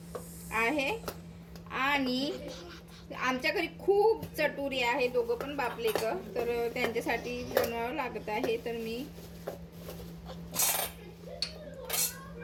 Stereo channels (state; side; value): identical; both; correlation 1.00